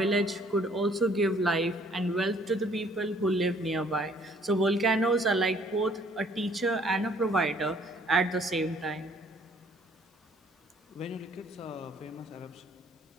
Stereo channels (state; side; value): normal; both; correlation 0.61